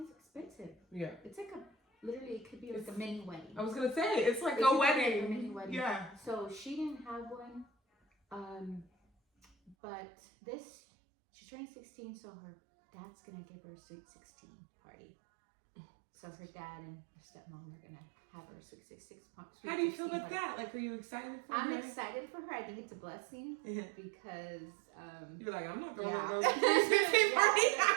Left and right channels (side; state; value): left; drops out; at 9.8 s